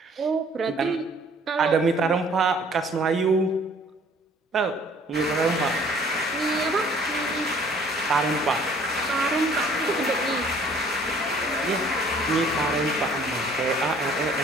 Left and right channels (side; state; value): both; normal; correlation 0.56